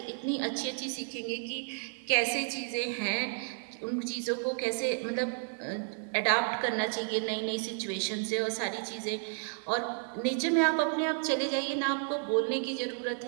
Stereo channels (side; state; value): left; silent; 56 dB below the other